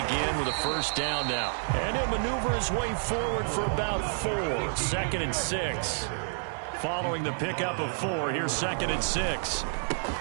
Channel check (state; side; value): silent; left; digital silence